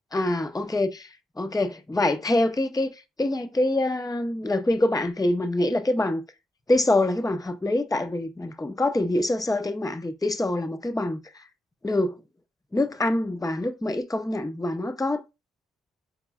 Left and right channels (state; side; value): normal; both; correlation 0.88